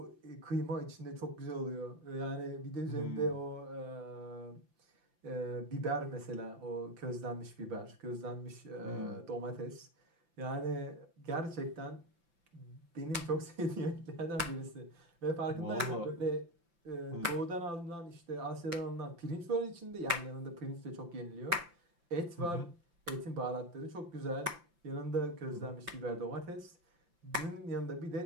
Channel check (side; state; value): left; late; 5.9 ms